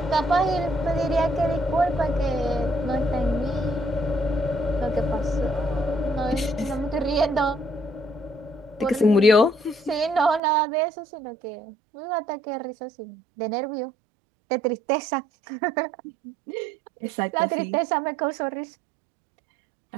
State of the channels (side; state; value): left; drops out; at 10.4 s